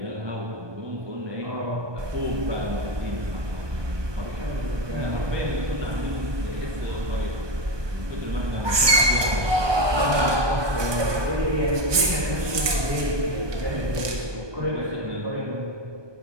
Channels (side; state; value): left; late; 1.2 ms